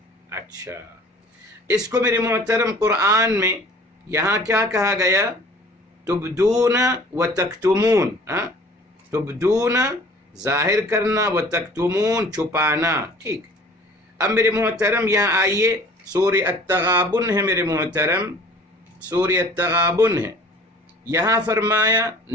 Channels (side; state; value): both; normal; correlation 0.49